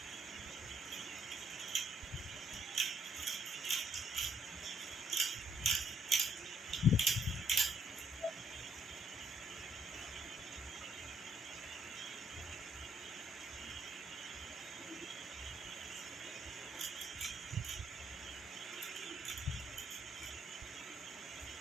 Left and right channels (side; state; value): both; normal; correlation 0.70